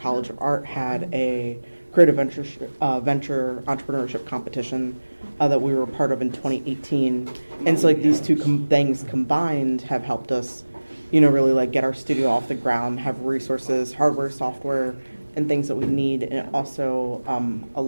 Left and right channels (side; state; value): both; inverted; correlation -1.00